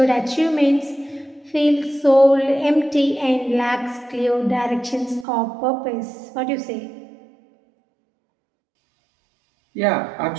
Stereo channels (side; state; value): left; drops out; at 5.2 s